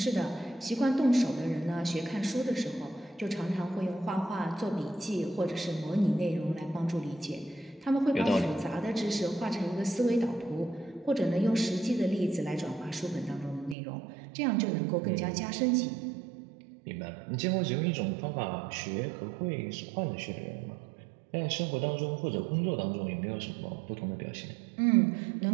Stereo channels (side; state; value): left; drops out; at 13.8 s